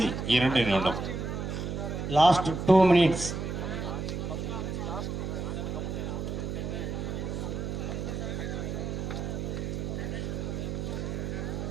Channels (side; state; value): right; noise; hum, 3 dB below the sound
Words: 2 நிமிடம். Last 2 minutes.